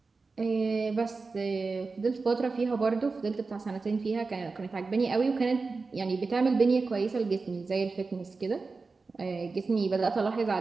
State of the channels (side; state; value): left; quieter; 4.1 dB